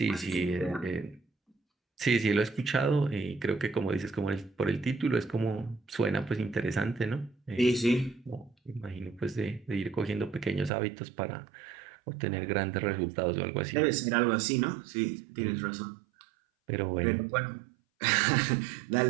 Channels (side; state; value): left; drops out; at 10.7 s